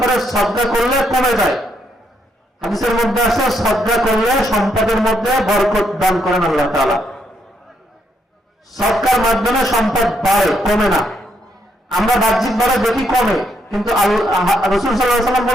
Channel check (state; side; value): normal; both; correlation 0.75